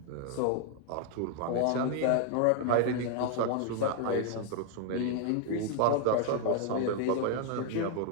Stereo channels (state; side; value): different; both; correlation 0.00